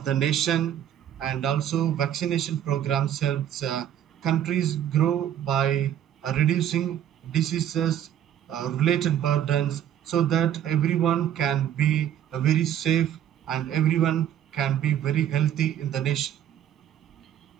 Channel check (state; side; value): quieter; left; 10.5 dB